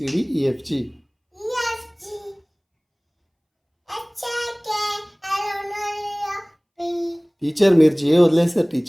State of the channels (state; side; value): identical; both; correlation 1.00